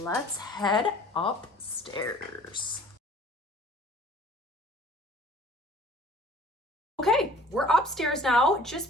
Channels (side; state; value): both; normal; correlation 0.50